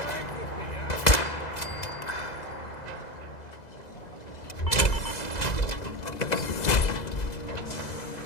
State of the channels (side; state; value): right; late; 2.0 ms